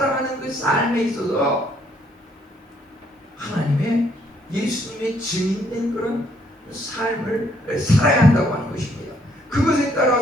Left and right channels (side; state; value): both; normal; correlation 0.68